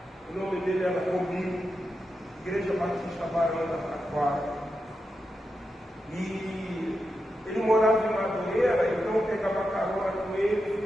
o nome dele era Romil, Igreja Batista Barão da Taquara. E ele morava em Madureira, então eu pegava carona com ele,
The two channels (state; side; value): normal; both; correlation 0.88